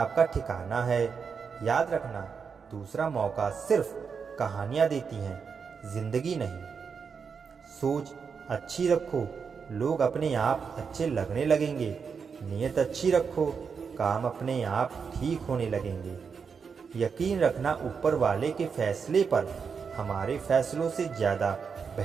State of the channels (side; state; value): left; quieter; 6.0 dB